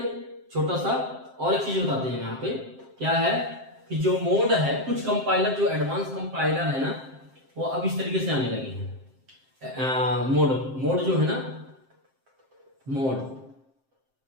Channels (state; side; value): late; left; 7.6 ms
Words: छोटा सा और एक चीज बताते हैं यहाँ पे, क्या है कि जो मोड है, कुछ कंपाइलर जो एडवांस कंपाइलर है ना, वो अब इस तरीके से आने लगे हैं। मोड जो है ना,